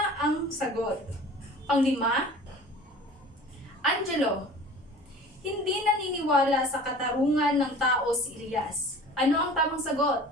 ang sagot. Panglima, Angelo. Hindi naniniwala sa katarungan ng tao si Elias. Ano ang tamang sagot?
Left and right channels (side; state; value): both; normal; correlation 0.43